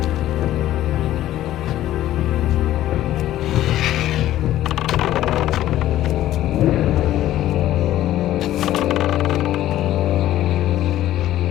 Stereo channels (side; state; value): right; quieter; 13.6 dB